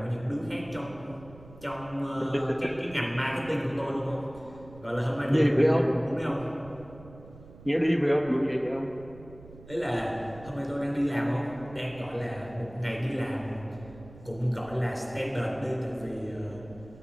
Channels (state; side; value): noise; right; rumble, 19 dB below the sound